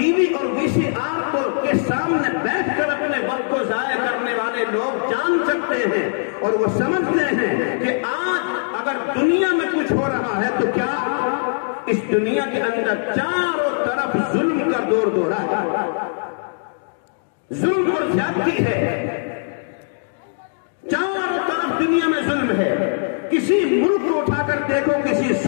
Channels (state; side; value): silent; right; digital silence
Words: وی اور وی سی آر کو کے سامنے بیٹھ کر اپنے وقت کو ضائع کرنے والے لوگ جان سکتے ہیں اور وہ سمجھتے ہیں کہ آج اگر دنیا میں کچھ ہو رہا ہے تو کیا اس دنیا کے اندر چاروں طرف ظلم کا دور دورہ ہے، ظلم اور زیادتی ہے، چاروں طرف دنیا میں ظلم ہے۔ کسی ملک کو اٹھا کر دیکھو، کسی